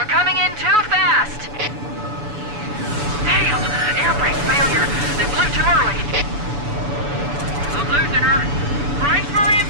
coming in too fast. Damn! Air brake failure. They blew too early. I'm losing her. Brace for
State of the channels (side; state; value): left; late; 7.0 ms